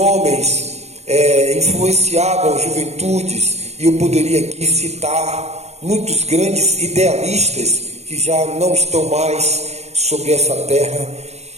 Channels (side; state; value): left; late; 0.31 ms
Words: influenciavam juventudes, e eu poderia aqui citar muitos grandes idealistas que já não estão mais sobre essa terra